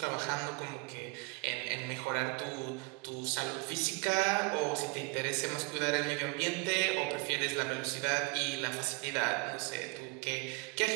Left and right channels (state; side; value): quieter; left; 28.6 dB